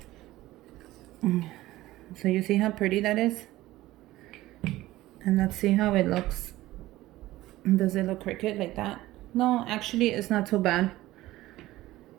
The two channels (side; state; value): left; quieter; 16.7 dB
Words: So you see how pretty that is? And let's see how it looks. Does it look crooked like that? No, actually it's not too bad,